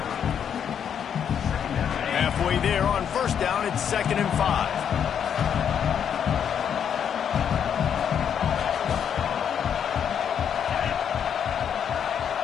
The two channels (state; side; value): quieter; right; 8.3 dB